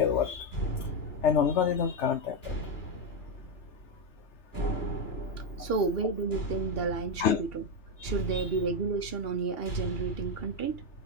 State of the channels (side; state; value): right; late; 2.8 ms